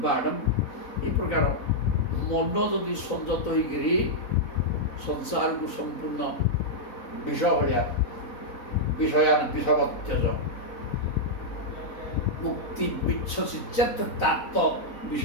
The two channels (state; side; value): late; right; 4.0 ms